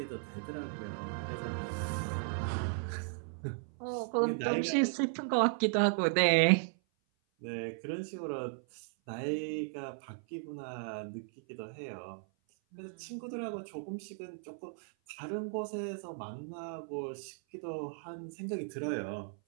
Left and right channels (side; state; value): left; silent; 54 dB below the other